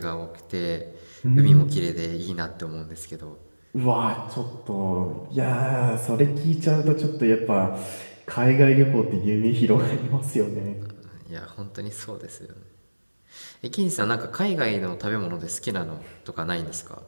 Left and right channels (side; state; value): both; inverted; correlation -1.00